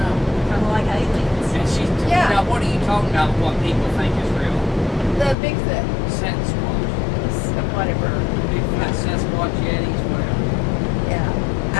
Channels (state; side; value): drops out; right; at 5.4 s